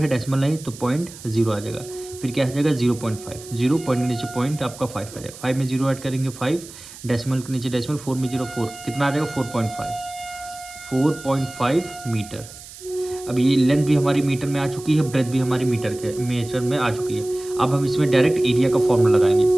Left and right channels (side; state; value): right; noise; hiss, 16 dB below the sound